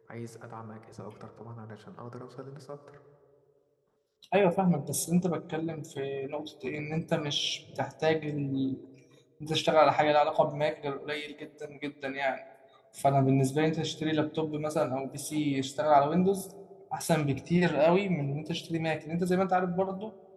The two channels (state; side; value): identical; both; correlation 1.00